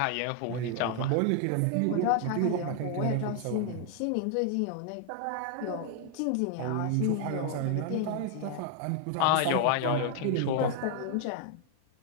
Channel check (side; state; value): both; different; correlation 0.00